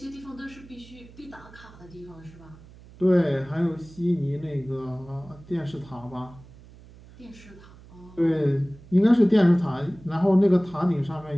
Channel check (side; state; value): right; noise; hum, 21 dB below the sound